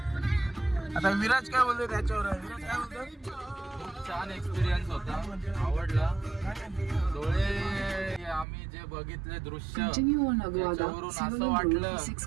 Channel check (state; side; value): drops out; left; at 8.5 s